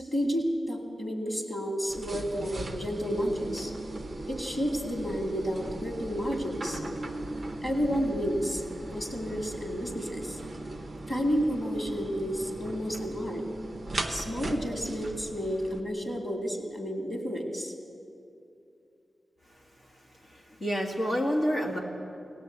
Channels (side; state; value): both; normal; correlation 0.90